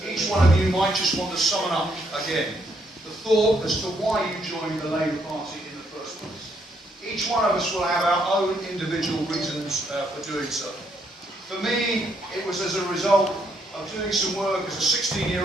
each one of you might just want to summon up again the thought as to why you joined the Labour Party in the first place. Each one of us will have our own individual reasons for doing so. For me, it was as a result of doing some work as a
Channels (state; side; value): normal; both; correlation 0.73